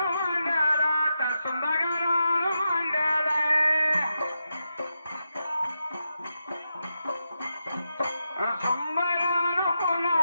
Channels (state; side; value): inverted; both; correlation -0.87